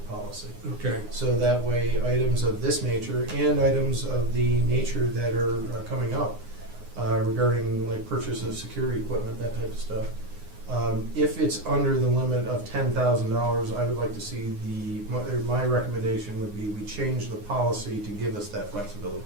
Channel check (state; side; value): late; left; 9.6 ms